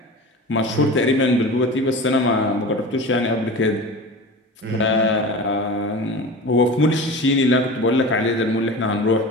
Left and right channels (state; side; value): normal; both; correlation 0.33